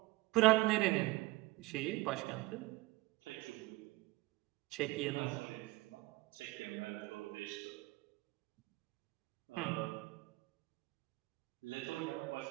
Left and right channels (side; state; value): left; quieter; 21.1 dB